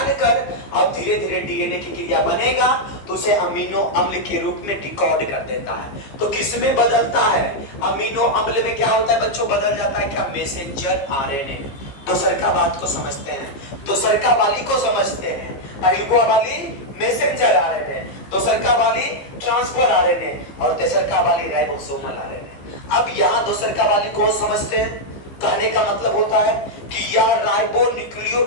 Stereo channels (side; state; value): right; late; 15 ms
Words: कर अब धीरे धीरे डीएनए की क्रिया बनेगा तो उसे अमीनो अम्ल के रूप में डिकोड कर देता है। तो किसमें बदलता है, अमीनो अम्ल में क्या होता है बच्चों, बदल जाता है क्या, मैसेंजर आरएनए। दोसरका बात को समझते हैं, दोसरका वाली को समझते हैं। पहलुआ वाली मैसेंजर आरएनए, दोसरका वाली ट्रांसफर आरएनए, और तेसरका वाली राइबोसोमल आरएनए। अब यहाँ दोसरका वाली को समझते हैं। कहने का मतलब होता है कि यह